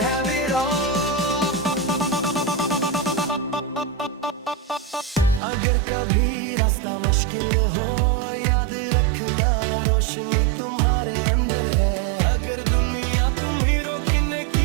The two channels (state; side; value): drops out; left; at 5.4 s